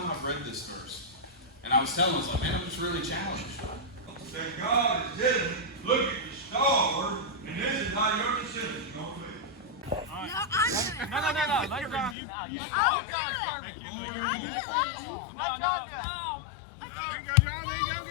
I've read this verse. And I was telling him, I was like, man, I'm just really challenged. That God is telling you, look at the star, and this is how your decision is going to be. No. Let God. Oh, God, perfect. No. There you go, John. There you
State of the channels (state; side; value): drops out; right; at 12.2 s